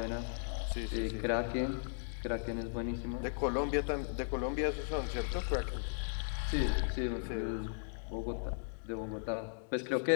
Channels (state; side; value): silent; right; digital silence